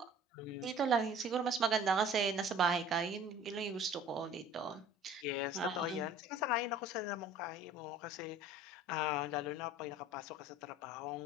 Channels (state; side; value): normal; both; correlation 0.47